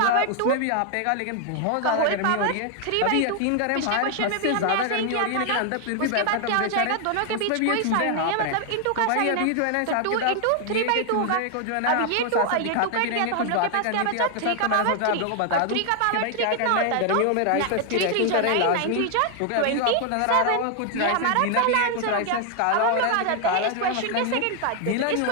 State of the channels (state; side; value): different; both; correlation 0.00